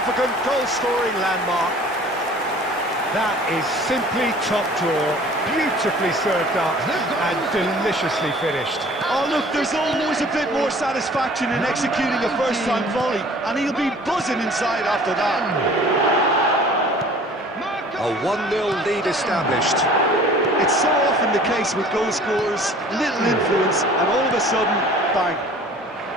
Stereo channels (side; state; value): both; normal; correlation 0.49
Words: goal-scoring landmark. That is simply top draw, beautifully served up and deliciously finished. Oh look, there's always a bit more satisfaction in executing a first-time volley, and he'll be buzzing inside after that. A 1-0 lead established. It's so often the case with goal scorers, little influence, and all of a sudden, bang.